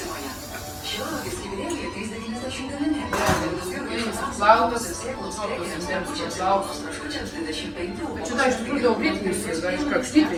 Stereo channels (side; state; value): both; identical; correlation 1.00